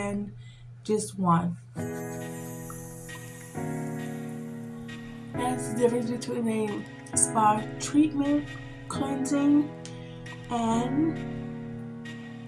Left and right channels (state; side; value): identical; both; correlation 1.00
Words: just one. That's the difference between a spa treatment, cleansing, and